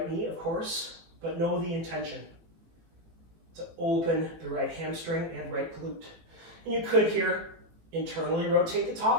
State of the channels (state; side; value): late; left; 18 ms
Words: knee, of course, but know the intention to open the right hamstring and right glute. And you could here internally rotate the